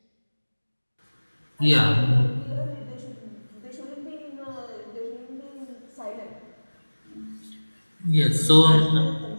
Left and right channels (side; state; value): both; inverted; correlation -1.00